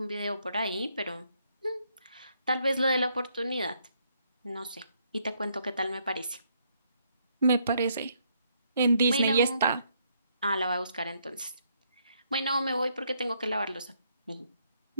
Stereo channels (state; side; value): inverted; both; correlation -0.72